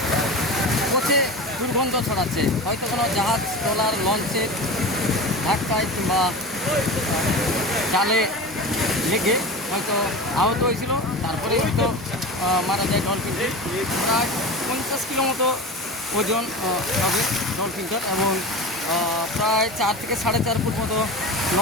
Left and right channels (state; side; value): normal; both; correlation 0.30